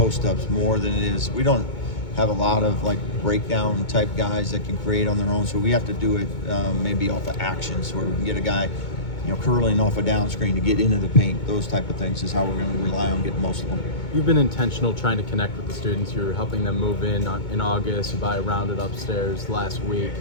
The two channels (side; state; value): right; late; 2.2 ms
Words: more than it is. We don't have a lot of breakdown type guys that can create on their own, so we have to do it maybe off of actions where we can get a guy curling off a down screen to get into the paint. Those type of things is how we're going to rely on getting most of them. You've been intentional trying to connect with the students. You're helping them move in August. You buy a rounded upstairs last week.